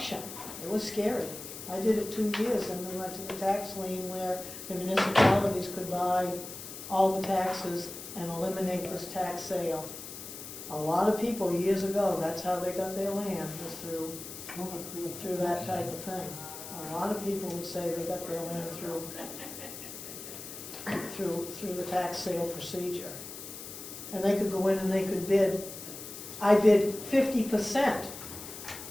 It was scary. I did it 2 years and we went to the tax lien where the municipalities could buy all the taxes and eliminate this tax sale. A lot of people years ago, that's how they got their land, was through that type of thing. A lot of people would say they got their land through the tax sale procedure. And they could go in and they could bid. I bid 50%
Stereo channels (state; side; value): noise; left; hiss, 11 dB below the sound